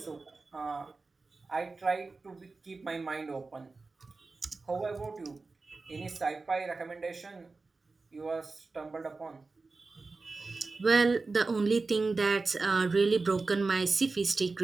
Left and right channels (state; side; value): quieter; left; 3.8 dB